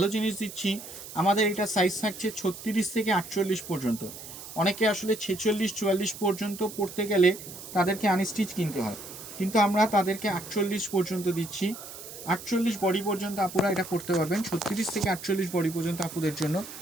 জিনিস দিচ্ছি। আমাদের এটা সাইজ থাকছে 36 থেকে 48 পর্যন্ত। অনেকে আসলে 46-44 পর্যন্ত পড়তে গেলে তাদেরকে আনস্টিচ কিনতে হয়, কিন্তু আমরা তাদেরকে 48 পর্যন্ত দিচ্ছি। 48 বডি পর্যন্ত আপুরা এটা করতে পারবেন। 36 থেকে 48 বডি পর্যন্ত আপুদের জন্য।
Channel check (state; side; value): noise; right; hiss, 13 dB below the sound